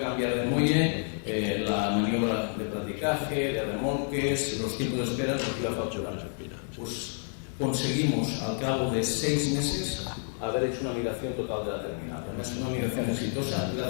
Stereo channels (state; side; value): silent; right; 58 dB below the other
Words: de muelle, la maniobra de practicaje, de remolques, los tiempos de espera nos iba a facturar. Pues conseguimos al cabo de 6 meses haber hecho una migración total de la terminal. Además, es una migración exitosa